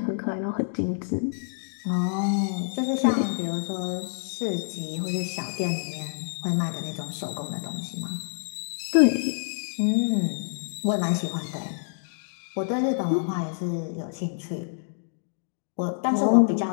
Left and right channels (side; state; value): right; silent; digital silence